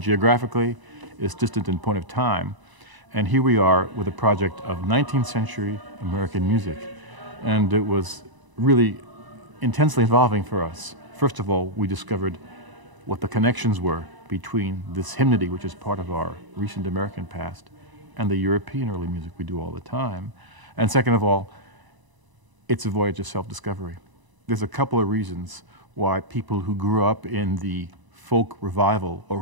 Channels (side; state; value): left; late; 1.0 ms